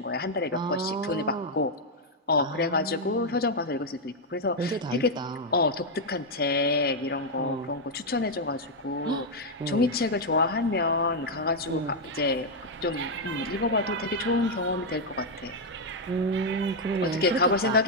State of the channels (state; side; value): normal; both; correlation -0.01